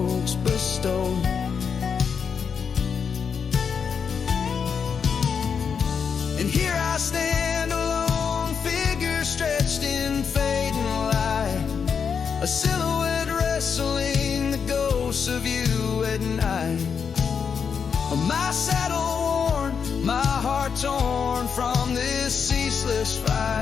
bestowed. And here I stand, a lone figure stretched in fading light, a silhouette wrestling the ghosts of you at night. My saddle worn, my heart torn from this ceaseless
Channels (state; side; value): quieter; right; 6.5 dB